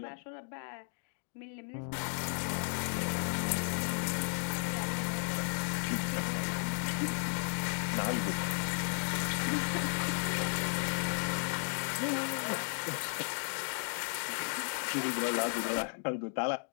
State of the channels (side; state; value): right; silent; 55 dB below the other